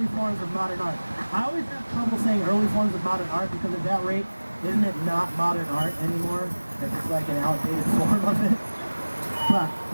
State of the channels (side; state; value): both; inverted; correlation -1.00